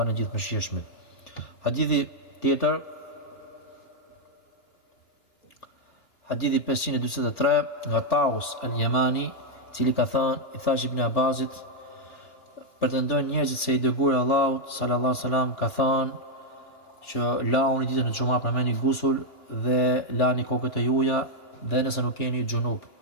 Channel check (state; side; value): late; right; 2.9 ms